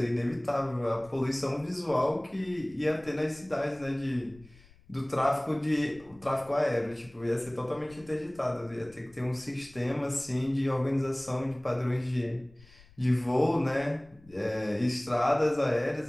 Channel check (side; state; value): left; noise; rumble, 25 dB below the sound